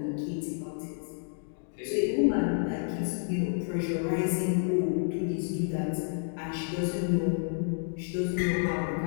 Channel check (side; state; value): right; silent; 58 dB below the other